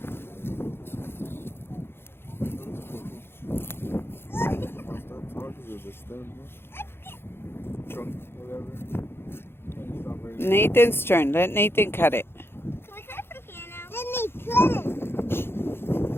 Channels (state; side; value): late; right; 0.11 ms